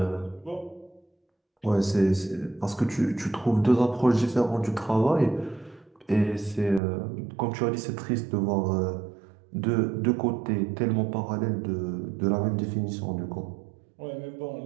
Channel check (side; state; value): left; drops out; at 6.8 s